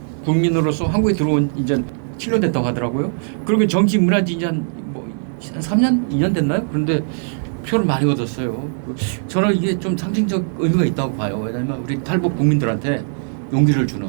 국민으로서 한국에 들어온 이제 7년 됐다고 하더라고요. 그러면 정치 문화지 이제 한 3년, 2년 됐나요? 그런데 표를 많이 얻었어요. 저는 이게 좀 상징적 의미가 있다고 봐요. 왜냐하면 우리 탈북 국민들한테 용기를 주는.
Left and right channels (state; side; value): silent; left; digital silence